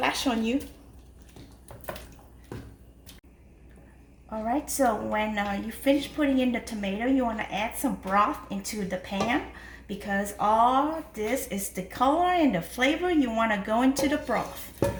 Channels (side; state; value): both; identical; correlation 1.00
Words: on you. Alright, so when you finish putting in the tomato, you want to add some broth into the pan, because all this is the color and the flavor you want to go into the broth.